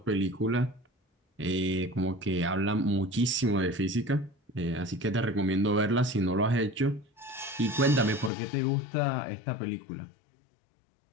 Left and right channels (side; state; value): right; drops out; at 8.3 s